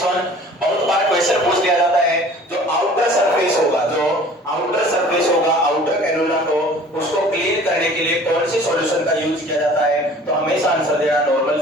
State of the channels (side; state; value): both; normal; correlation 0.48